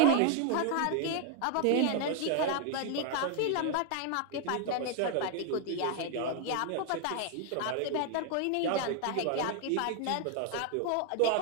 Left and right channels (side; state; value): both; different; correlation 0.01